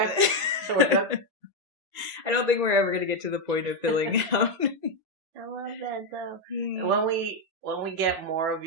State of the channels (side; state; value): left; late; 1.9 ms